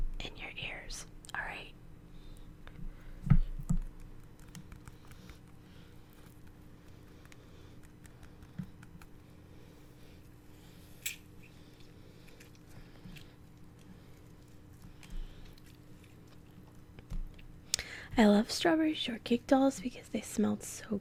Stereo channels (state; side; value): identical; both; correlation 1.00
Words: in your ears. All right. I love strawberry shortcake dolls because they smelled so